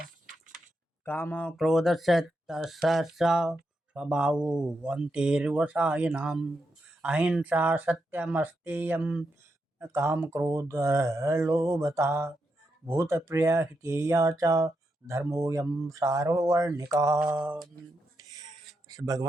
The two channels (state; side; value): normal; both; correlation 0.84